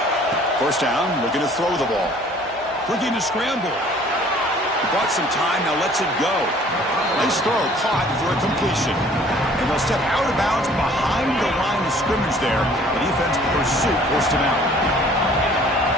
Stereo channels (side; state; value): both; normal; correlation 0.54